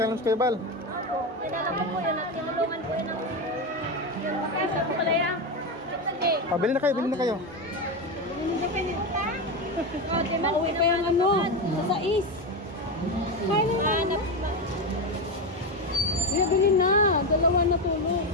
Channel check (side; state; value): both; normal; correlation 0.14